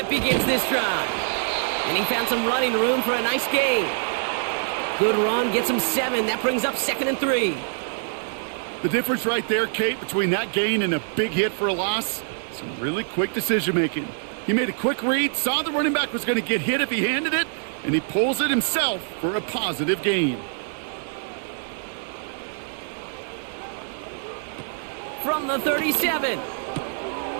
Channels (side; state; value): left; silent; digital silence